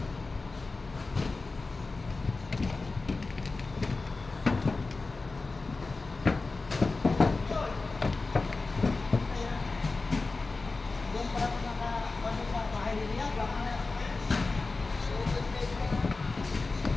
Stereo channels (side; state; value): right; quieter; 3.7 dB